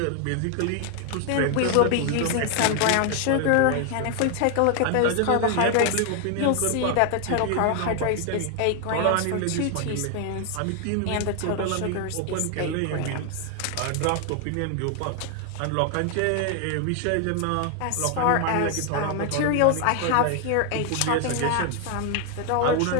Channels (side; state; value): both; different; correlation 0.00